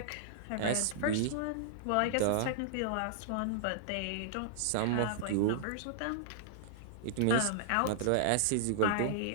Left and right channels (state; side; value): different; both; correlation -0.01